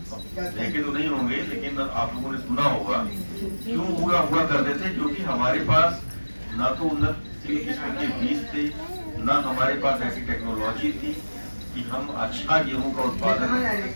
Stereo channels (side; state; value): both; inverted; correlation -1.00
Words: देखे तो नहीं होंगे लेकिन आप लोगों ने सुना होगा। क्यों हुआ करते थे? क्योंकि हमारे पास ना तो उन्नत किस्म के बीज थे, ना हमारे पास ऐसी टेक्नोलॉजी थी कि हम अच्छा गेहूं का उत्पादन